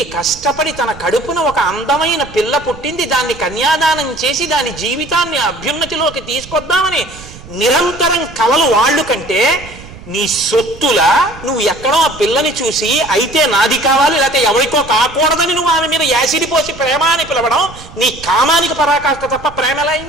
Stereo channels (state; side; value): noise; right; rumble, 18 dB below the sound